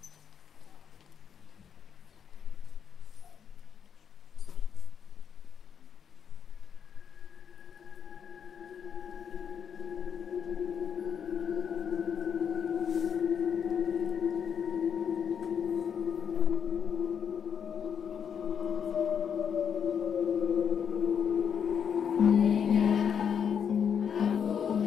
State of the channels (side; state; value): right; quieter; 7.6 dB